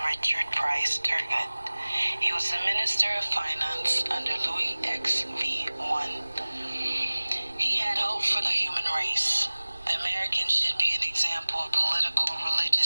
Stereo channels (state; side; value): inverted; both; correlation -1.00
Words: Richard Price Turgot. He was the Minister of Finance under Louis XV1. He had hope for the human race. The Americans should be an example of political,